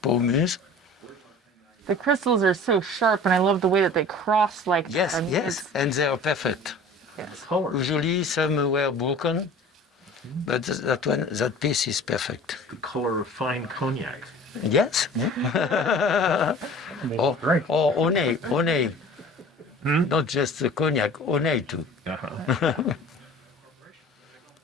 Paul Muse. The crystals are so sharp, and I love the way that they cross like Yes, that. I mean, yes, and they are perfect. Yes. Color. Usually some were broken, but that piece is perfect. The color of fine cognac. Yes. or Onay. Not just the cognac, Onay too.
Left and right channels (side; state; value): both; normal; correlation 0.43